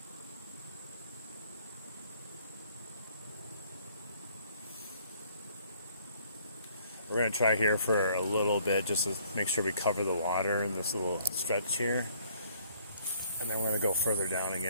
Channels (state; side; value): inverted; both; correlation -0.62